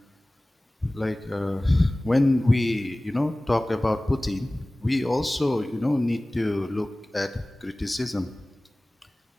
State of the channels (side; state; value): both; normal; correlation 0.98